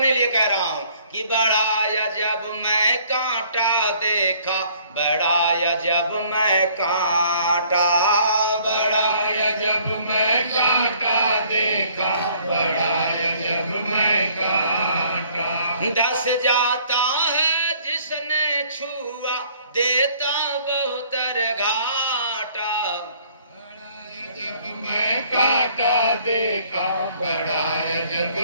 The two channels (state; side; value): inverted; both; correlation -0.59